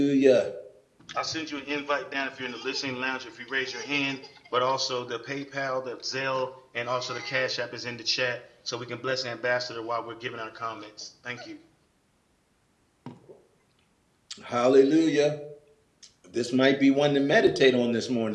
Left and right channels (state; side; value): identical; both; correlation 1.00